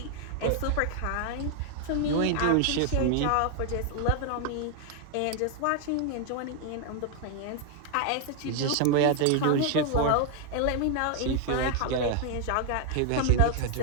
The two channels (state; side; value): different; both; correlation 0.00